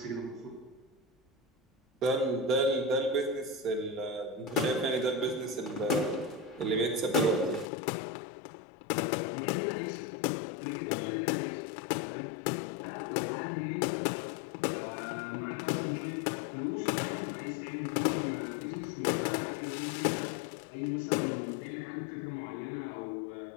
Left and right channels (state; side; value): drops out; right; at 7.7 s